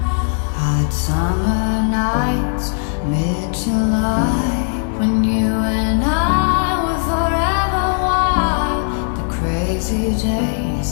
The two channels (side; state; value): right; silent; digital silence